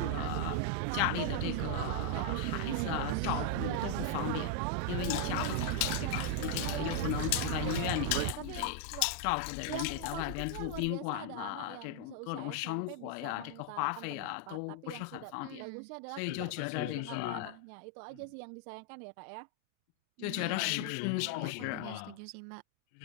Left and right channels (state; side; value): different; both; correlation 0.00